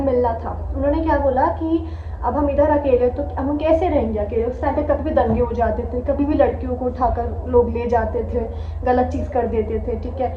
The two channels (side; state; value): both; identical; correlation 1.00